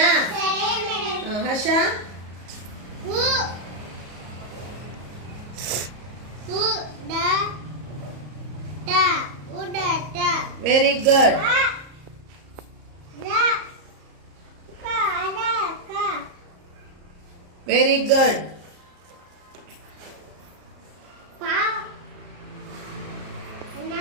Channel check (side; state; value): left; late; 34 ms